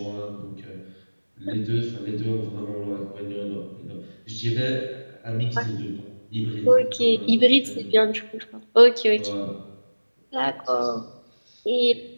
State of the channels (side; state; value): both; inverted; correlation -1.00